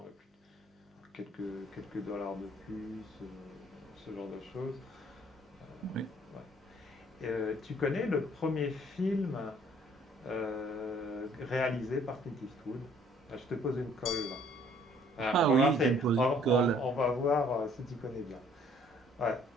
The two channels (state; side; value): normal; both; correlation 0.60